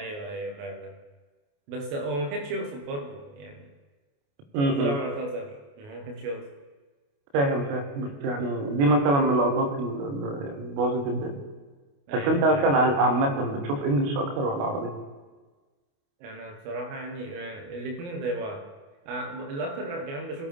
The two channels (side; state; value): left; late; 28 ms